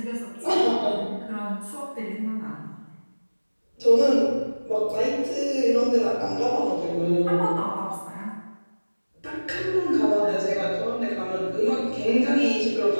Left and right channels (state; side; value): inverted; both; correlation -1.00